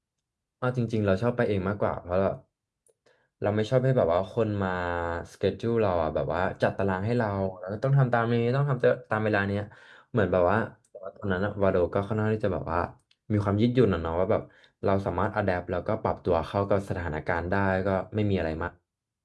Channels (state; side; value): identical; both; correlation 1.00